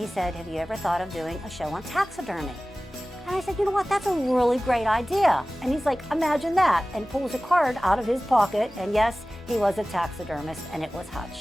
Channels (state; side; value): normal; both; correlation 0.97